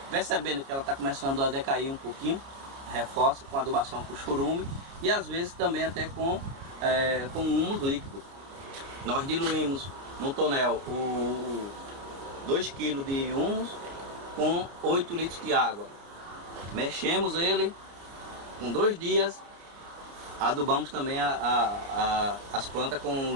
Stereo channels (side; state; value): left; late; 29 ms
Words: percebendo que ela está começando a decair um pouquinho, reforça com adubação com chorume e às vezes também até com humus líquido. Nós diluímos no tonel 2 kg de humus com 8 litros de água. Mexemos ele, com 2 dias, adubamos também as plantas com o